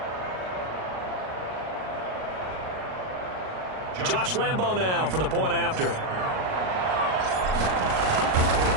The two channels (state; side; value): late; left; 38 ms